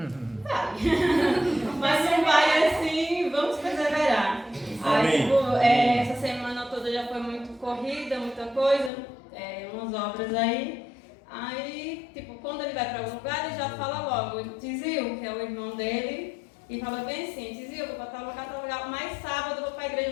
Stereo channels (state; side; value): drops out; right; at 8.9 s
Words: Vai. Mas não vai assim, vamos perseverar. Aí tipo, essa semana toda já foi muito corrida. vida, muita coisa, umas obras aí. Aí, tipo, quando ele vai para algum lugar, ele já fala logo, Tizil, que é o irmão dele, e fala bem assim, Tizil, eu vou para tal lugar, mas sábado eu vou para a igreja